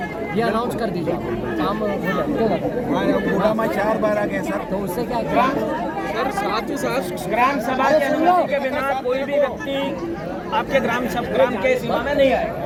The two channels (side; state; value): both; identical; correlation 1.00